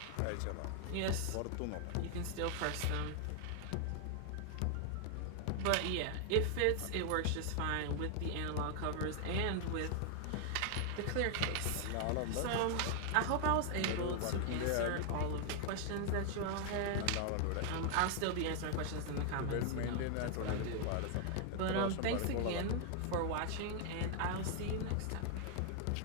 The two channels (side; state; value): both; different; correlation 0.00